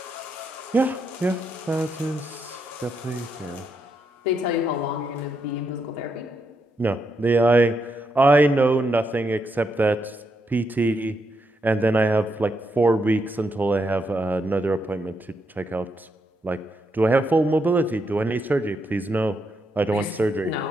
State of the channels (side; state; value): both; normal; correlation 0.80